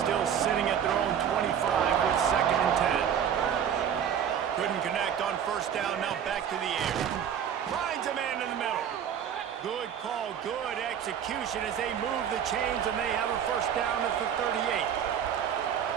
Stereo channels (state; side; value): quieter; left; 8.7 dB